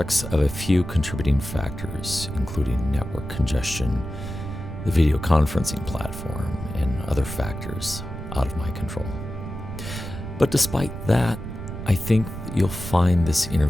of a few contributing factors, including network congestion, the video conferencing platform, and other factors out of my control. But despite that, I think you'll find this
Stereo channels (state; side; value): noise; right; rumble, 8 dB below the sound